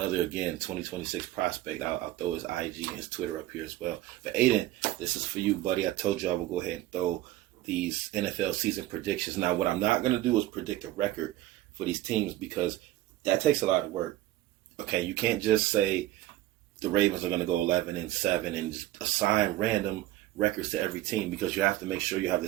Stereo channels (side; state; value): left; quieter; 15.4 dB